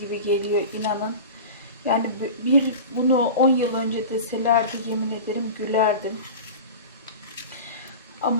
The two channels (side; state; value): both; inverted; correlation -0.32